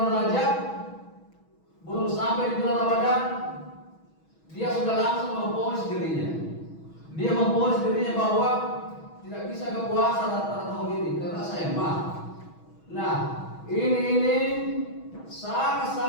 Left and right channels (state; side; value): late; right; 6.2 ms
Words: Rajab, belum sampai di bulan Ramadan, dia sudah langsung memponis dirinya. Dia memponis dirinya bahwa tidak bisa berpuasa pada tahun ini karena saya mah. Nah, ini